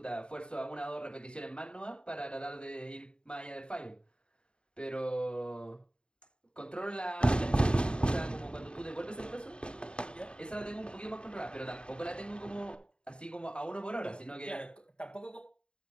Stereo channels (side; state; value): right; late; 0.052 ms